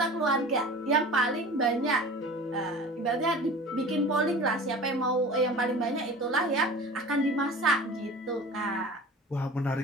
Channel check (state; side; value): normal; both; correlation 0.39